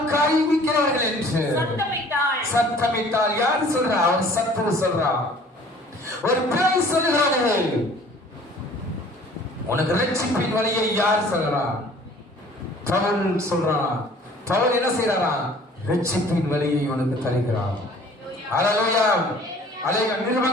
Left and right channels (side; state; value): both; normal; correlation 0.51